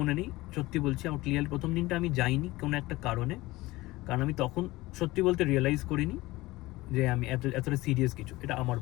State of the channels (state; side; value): quieter; right; 19.5 dB